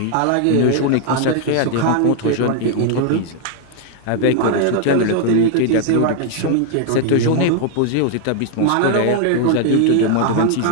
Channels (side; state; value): both; different; correlation 0.00